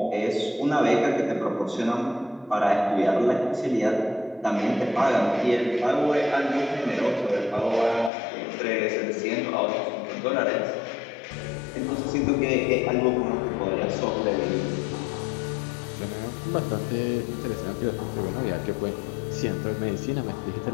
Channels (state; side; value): drops out; right; at 8.1 s